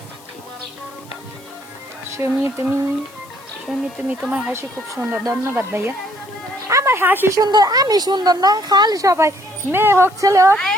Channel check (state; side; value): noise; left; hiss, 25 dB below the sound